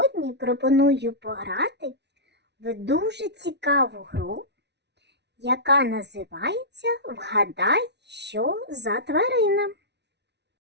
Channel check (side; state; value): left; late; 0.50 ms